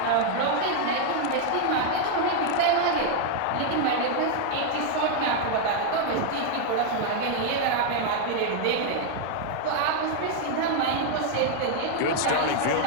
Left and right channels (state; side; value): different; both; correlation 0.00